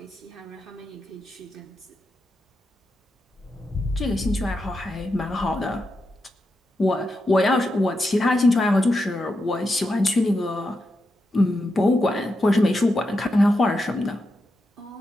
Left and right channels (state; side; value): normal; both; correlation 0.86